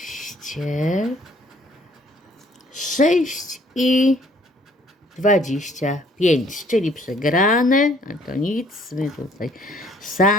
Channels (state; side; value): normal; both; correlation 0.60